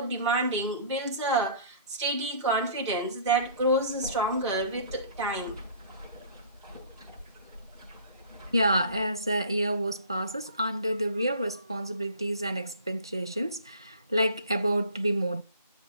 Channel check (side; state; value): both; inverted; correlation -0.48